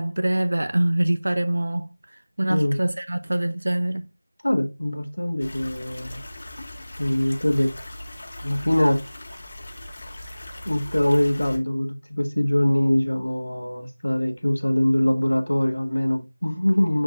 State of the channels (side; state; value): both; inverted; correlation -0.99